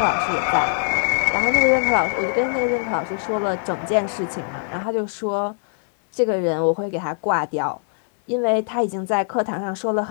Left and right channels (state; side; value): silent; right; digital silence